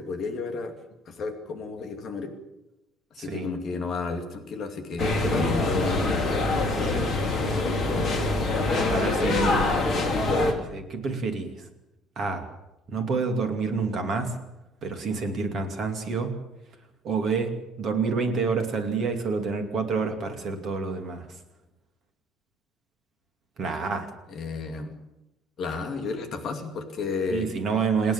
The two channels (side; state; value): both; normal; correlation 0.57